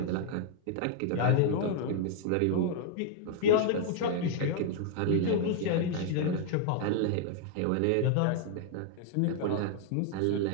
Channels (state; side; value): different; both; correlation 0.00